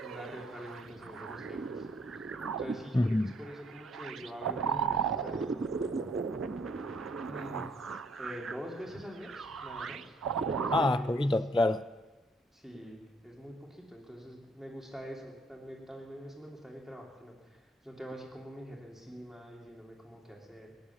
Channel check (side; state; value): both; normal; correlation 0.65